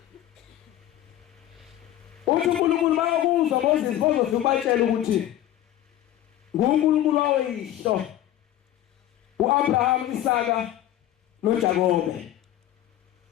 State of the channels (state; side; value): quieter; right; 12.6 dB